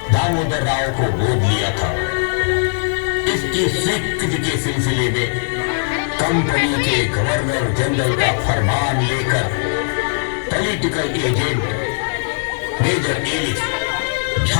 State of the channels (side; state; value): right; silent; 58 dB below the other